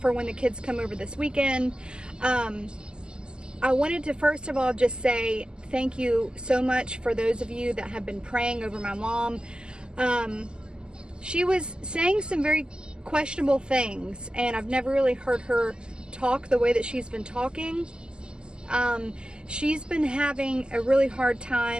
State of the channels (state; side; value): late; left; 0.047 ms